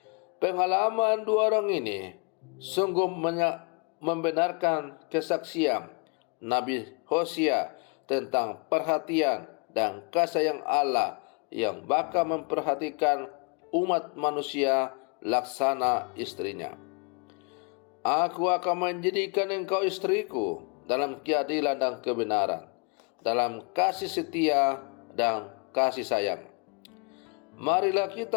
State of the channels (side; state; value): right; quieter; 33.7 dB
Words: Pengalaman dua orang ini sungguh membenarkan kesaksian Nabi Hosea tentang perhatian dan kasih sayang Allah yang bakal memperhatikan umat manusia laksana istrinya. Aku akan menjadikan engkau istriku dalam keadilan dan kebenaran, dalam kasih setia dan kasih sayang. Marilah